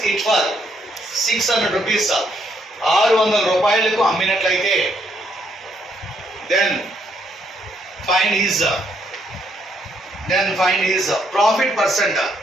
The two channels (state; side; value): normal; both; correlation 0.73